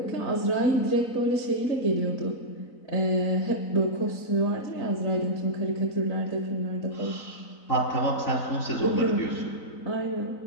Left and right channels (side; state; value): right; late; 4.0 ms